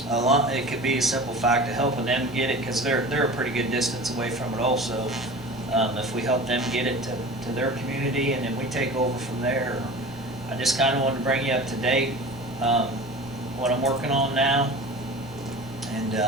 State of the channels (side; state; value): both; normal; correlation 0.37